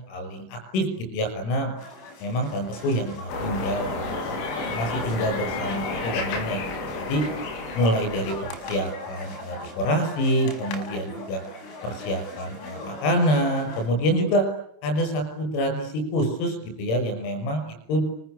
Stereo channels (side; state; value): right; late; 27 ms